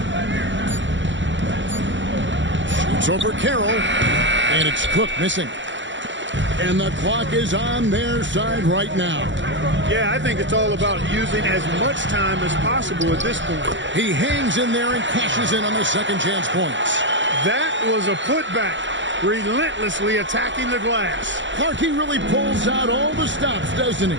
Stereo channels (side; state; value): left; late; 0.54 ms